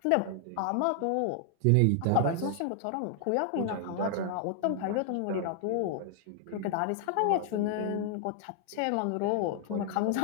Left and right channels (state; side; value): different; both; correlation 0.00